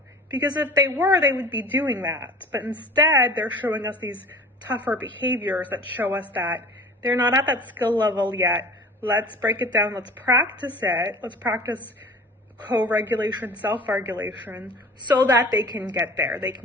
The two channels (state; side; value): normal; both; correlation 0.42